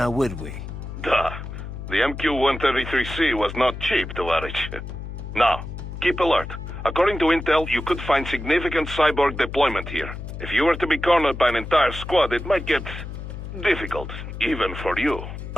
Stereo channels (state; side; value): noise; left; hum, 9 dB below the sound